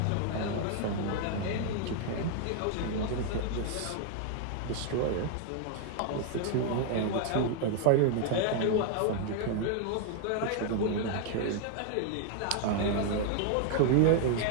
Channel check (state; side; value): different; both; correlation -0.01